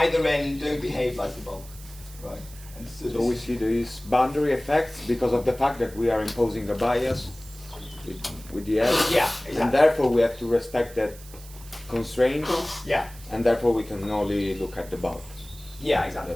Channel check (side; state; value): right; noise; hiss, 19 dB below the sound